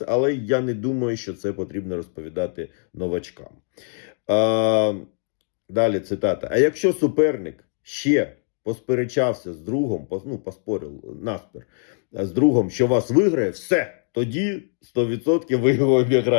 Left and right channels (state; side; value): silent; right; 60 dB below the other